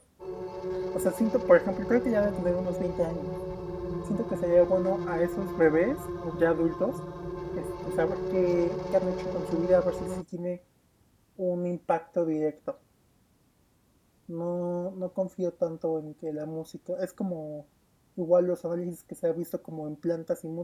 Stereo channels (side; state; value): both; identical; correlation 1.00